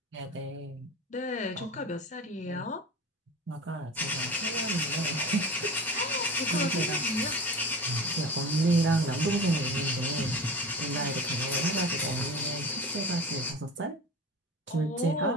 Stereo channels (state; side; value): normal; both; correlation 0.33